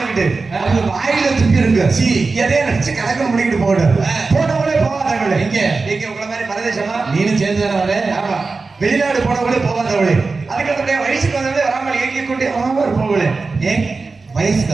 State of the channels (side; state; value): left; quieter; 4.0 dB